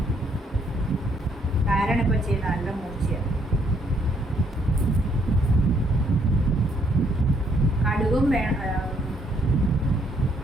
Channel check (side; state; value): both; normal; correlation 0.69